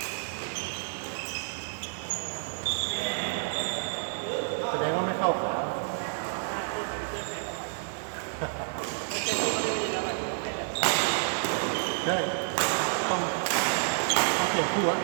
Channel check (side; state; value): left; silent; digital silence